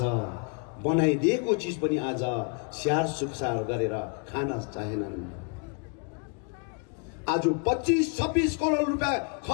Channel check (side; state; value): right; quieter; 38.3 dB